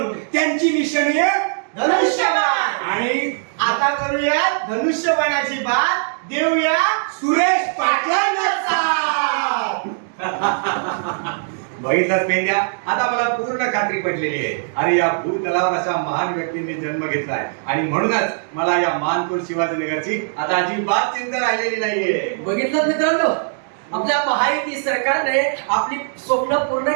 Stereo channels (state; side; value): silent; left; digital silence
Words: त्यांची निशाणी आहे धनुष्यबाण. आणि आता करूया धनुष्यबाणाची बात, देऊया सुरेश पाटलांना साथ. बघितलंच पेंड्या, आता मला पूर्ण खात्री पटलेली आहे. अरे या भूतलावर अशा महान व्यक्तींनी जन्म घेतलाय आणि म्हणूनच मला या मानखुर्द शिवाजीनगरची आता अजिबात चिंता राहिलेली नाहीये. बघितलं मित्रांनो, आपल्या महायुती सरकारने आपली स्वप्न पूर्ण